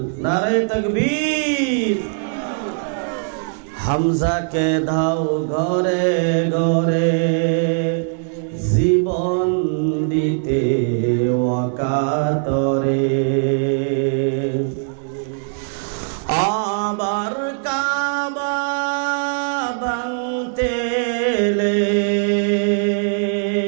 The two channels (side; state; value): left; silent; digital silence